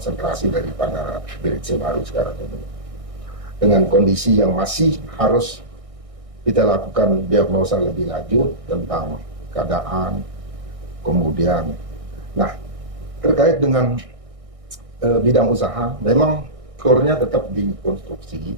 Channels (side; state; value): left; late; 1.6 ms